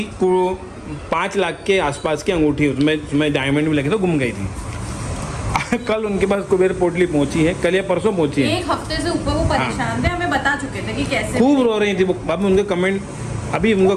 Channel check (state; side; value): identical; both; correlation 1.00